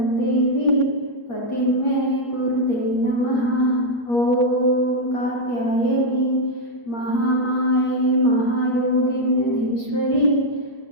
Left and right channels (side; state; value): right; late; 8.5 ms